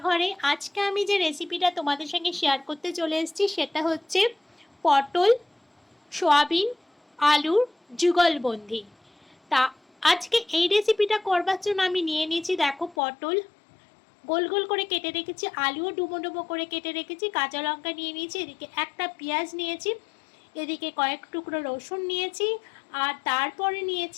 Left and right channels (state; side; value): drops out; right; at 13.0 s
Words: আজকে আমি যে রেসিপিটা তোমাদের সঙ্গে শেয়ার করতে চলে এসেছি সেটা হচ্ছে পটল সয়াবিন আলুর যুগলবন্দি। তা আজকে এই রেসিপিটা করবার জন্য আমি নিয়ে নিয়েছি, দেখো, পটল গোল গোল করে কেটে রেখেছি, আলুও ডুমো ডুমো করে কেটে রেখেছি, কাঁচা লঙ্কা নিয়ে নিয়েছি, এদিকে একটা পেঁয়াজ নিয়েছি, এদিকে কয়েক টুকরো রসুন নিয়েছি, আর তারপরে